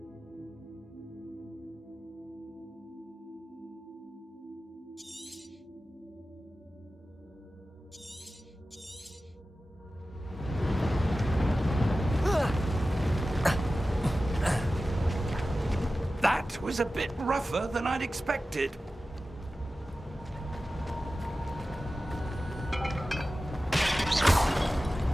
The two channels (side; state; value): both; normal; correlation 0.95